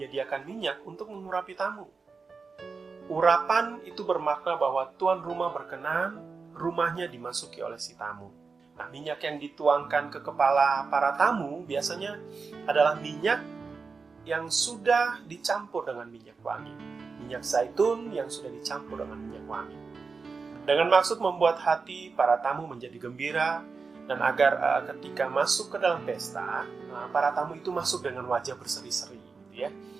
minyak untuk mengurapi tamu. Urapan itu bermakna bahwa tuan rumah berkenan rumahnya dimasuki oleh si tamu. Nah, minyak yang dituangkan ke kepala para tamu biasanya adalah minyak yang sudah dicampur dengan minyak wangi. Minyak zaitun yang sudah dicampur dengan minyak wangi. Dengan maksud membuat hati para tamu menjadi gembira dan agar ketika masuk ke dalam pesta, para tamu itu masuk dengan wajah berseri-seri, gitu ya.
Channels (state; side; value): quieter; left; 4.7 dB